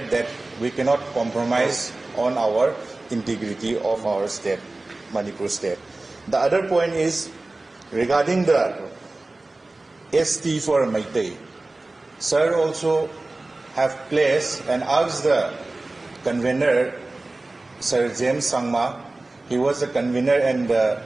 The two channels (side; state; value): left; quieter; 3.0 dB